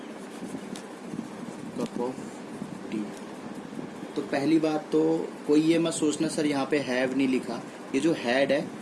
Cup of tea. तो पहली बात तो कोई ये मत सोचना सर यहाँ पे हैव नहीं लिखा, ये जो हैड है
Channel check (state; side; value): identical; both; correlation 1.00